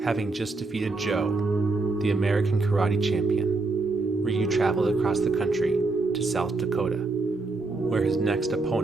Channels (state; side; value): quieter; left; 3.5 dB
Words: Having just defeated Joe, the American karate champion, Ryu traveled across the country to South Dakota, where his next